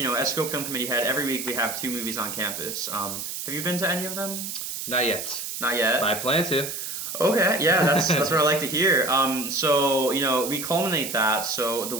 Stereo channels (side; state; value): right; noise; hiss, 6 dB below the sound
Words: Scope Film Committee head, every week we have 2 movies on campus. Have you been to any of them? Not yet. Not yet. But I plan to. Okay, yeah, that's what I like to hear. So we culminate that. So the